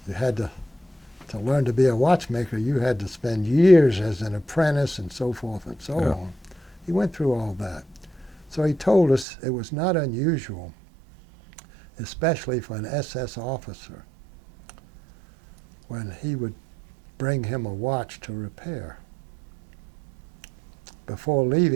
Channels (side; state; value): left; drops out; at 9.2 s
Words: you had to learn to be a watchmaker, you had to spend years as an apprentice and so forth and so on. He went through all that. So he told us it was not unusual, especially for an SS officer, when he would bring him a watch to repair. Before